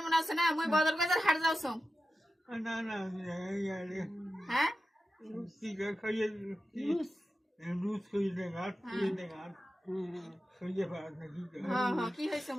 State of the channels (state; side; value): normal; both; correlation 0.92